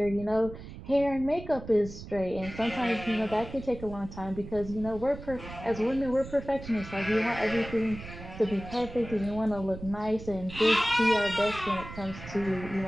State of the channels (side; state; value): right; noise; rumble, 13 dB below the sound